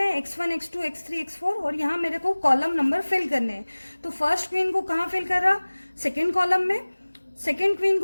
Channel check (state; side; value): inverted; both; correlation -1.00